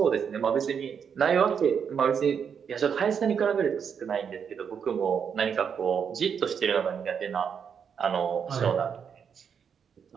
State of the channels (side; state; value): left; quieter; 7.1 dB